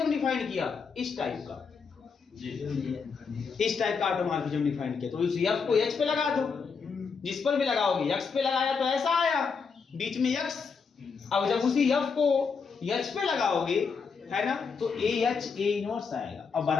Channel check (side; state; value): right; quieter; 5.4 dB